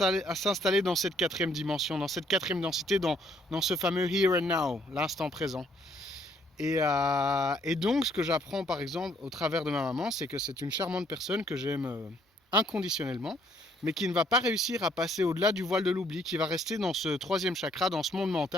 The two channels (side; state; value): both; normal; correlation 0.66